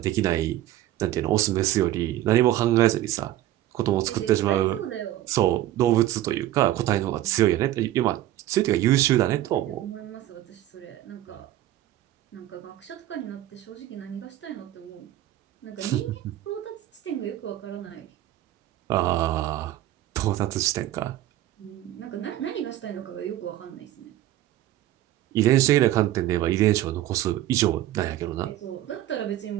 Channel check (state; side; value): quieter; left; 13.8 dB